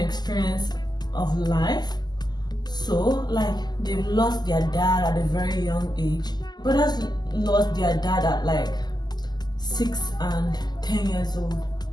experience of life. So like, they've lost their dad at a very young age. Brothers lost their dad at like 6 and 10 years old.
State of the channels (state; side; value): late; right; 0.20 ms